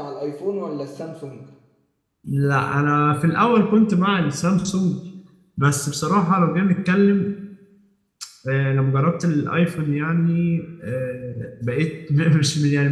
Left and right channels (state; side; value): identical; both; correlation 1.00